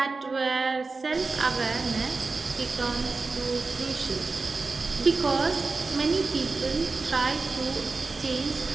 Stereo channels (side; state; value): left; quieter; 3.9 dB